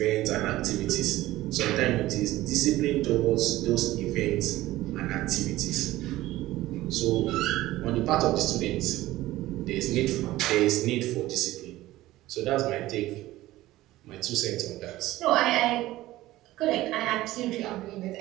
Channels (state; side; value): quieter; left; 16.5 dB